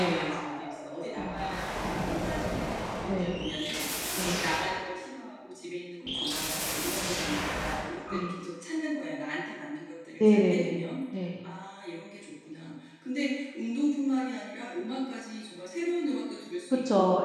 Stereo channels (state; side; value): identical; both; correlation 1.00